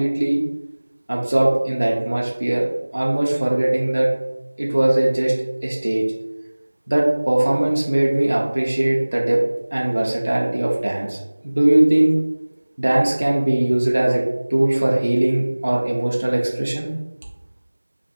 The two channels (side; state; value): both; inverted; correlation -1.00